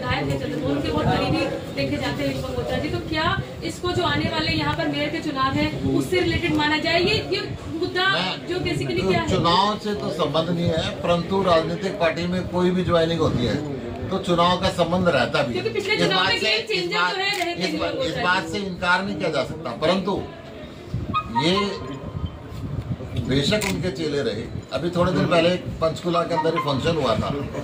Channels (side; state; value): both; identical; correlation 1.00